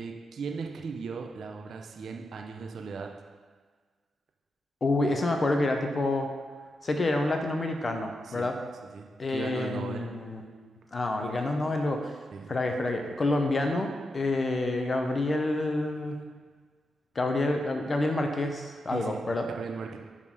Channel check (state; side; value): normal; both; correlation 0.87